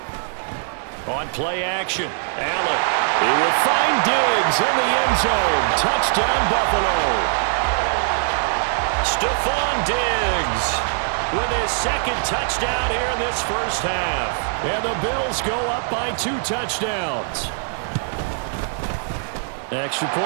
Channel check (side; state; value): left; silent; digital silence